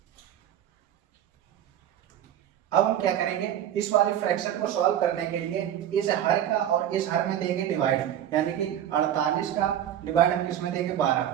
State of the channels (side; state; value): left; quieter; 10.8 dB